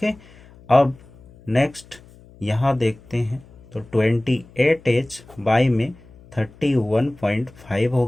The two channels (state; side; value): noise; left; hum, 24 dB below the sound